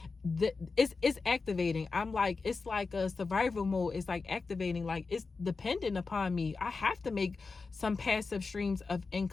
it's activating. I'm like, it's like a survival mode. It's like activating, like it's dependent upon me. I have to make some passive streams of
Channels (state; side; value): quieter; right; 4.3 dB